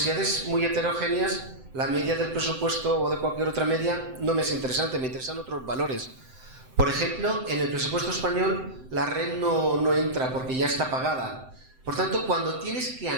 muy heterogéneas, la media del presupuesto o de cualquier otra media no me es interesante, me interesan otros valores. Por ejemplo, en el presupuesto español la red no entra porque ya está pagada. Por tanto, cuando tienes que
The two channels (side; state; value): left; late; 7.8 ms